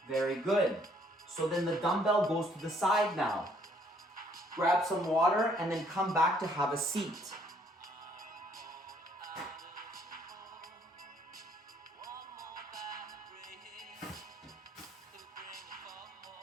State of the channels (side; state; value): both; normal; correlation 0.65